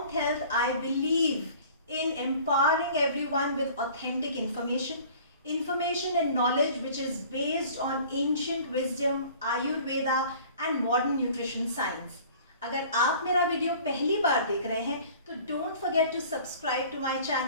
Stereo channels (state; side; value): inverted; both; correlation -0.48